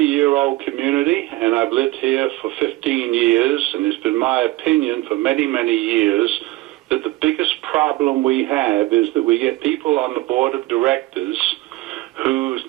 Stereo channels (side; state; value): left; quieter; 18.6 dB